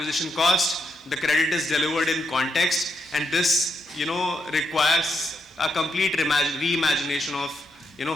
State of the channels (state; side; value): normal; both; correlation 0.81